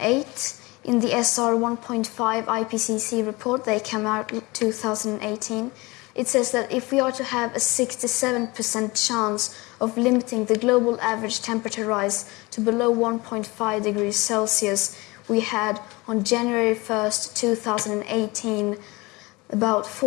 in the SR 1.5 IPCC report that came out in 2018, it says that if we are to have a 67% chance of limiting the global average temperature rise to below 1.5 degrees Celsius, we had on January 1st, 2018, about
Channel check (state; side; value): quieter; right; 23.6 dB